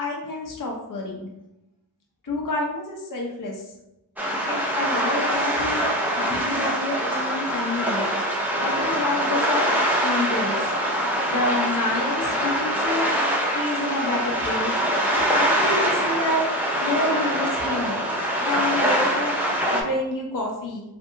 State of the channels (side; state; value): both; normal; correlation 0.21